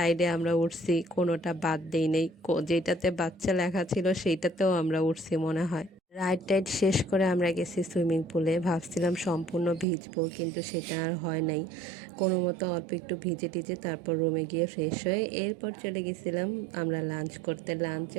আমরা উঠছি, কোনোটা বাদ দেই নেই। যেটাতে বাচ্চা লেখা ছিল সেইটাতেও আমরা উঠছি মনে হয়। রাইড টাইড শেষ করে আমরা গেছি সুইমিং পুলে, ভাবছিলাম সম্পূর্ণ ভিজবো, কিন্তু সেটা আর হয় নাই। কোনো মতো অল্প একটু ভিজে টিজে তারপর রুমে গিয়ে ফ্রেশ হয়ে এরপর চলে গেছিলাম আমরা লাঞ্চ করতে। লাঞ্চে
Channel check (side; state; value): left; drops out; at 9.9 s